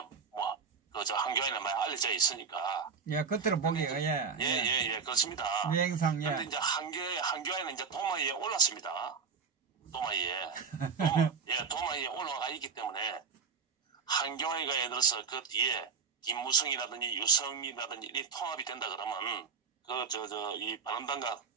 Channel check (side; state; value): left; quieter; 5.6 dB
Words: 한교안에 많이 알려져 있으니까. 예, 겉으로 보기가 예, 그렇습니다. 유행상 그런데 이제 한교안은 이제 도마위에 올랐습니다. 도마위에 올라가 있기 때문에 한교안이가 예를 들어서 그 뒤에 김무성이라든지 유성이라든지 이 통합이 된다 그러면 이 바른당과